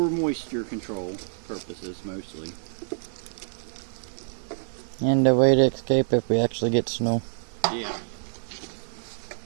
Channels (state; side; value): silent; left; digital silence